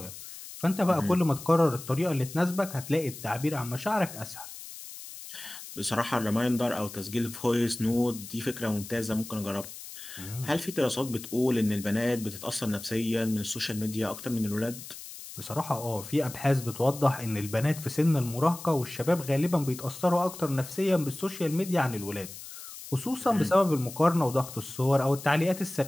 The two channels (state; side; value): noise; left; hiss, 13 dB below the sound